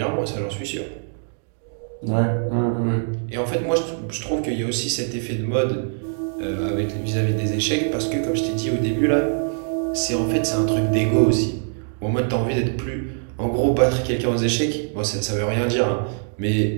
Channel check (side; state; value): left; silent; digital silence